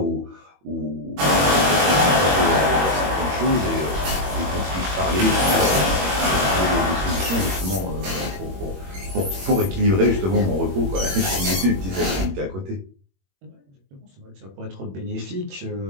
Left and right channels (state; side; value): late; left; 21 ms